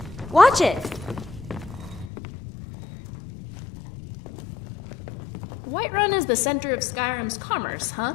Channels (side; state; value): right; drops out; at 2.1 s